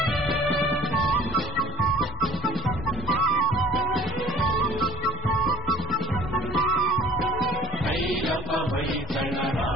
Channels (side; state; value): both; normal; correlation 0.49